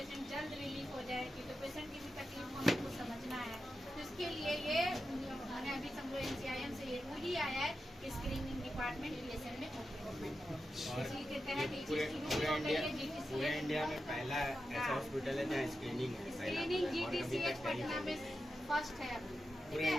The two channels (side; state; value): both; normal; correlation 0.90